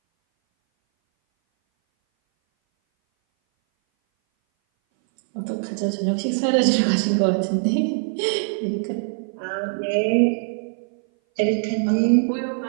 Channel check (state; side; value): silent; left; 59 dB below the other